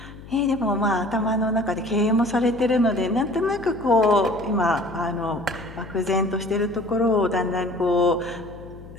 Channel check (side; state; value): left; noise; hum, 17 dB below the sound